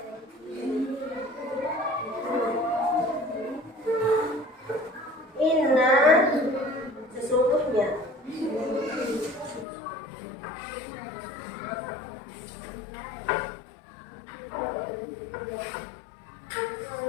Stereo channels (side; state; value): right; drops out; at 9.7 s